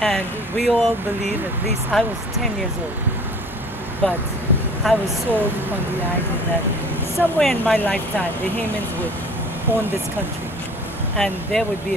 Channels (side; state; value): both; normal; correlation 0.47